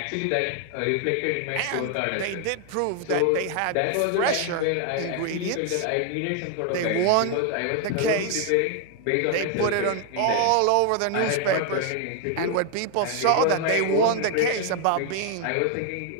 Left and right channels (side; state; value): both; different; correlation 0.00